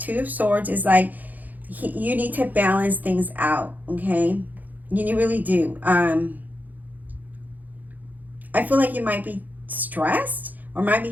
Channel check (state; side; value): late; left; 0.082 ms